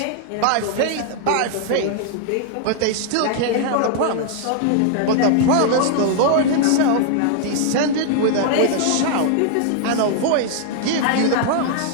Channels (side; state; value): both; different; correlation -0.01